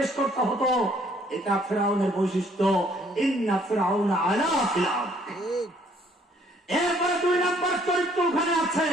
করতে হতো। এটা ফিরআউনের বৈশিষ্ট্য, ইন্না ফিরআউনা আলা ফিল আরদ। এরপরে 2 নম্বর চরিত্র ওখানে আছে,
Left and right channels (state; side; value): normal; both; correlation 0.63